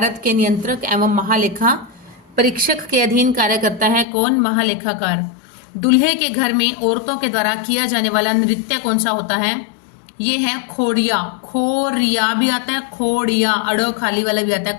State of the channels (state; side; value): drops out; right; at 4.0 s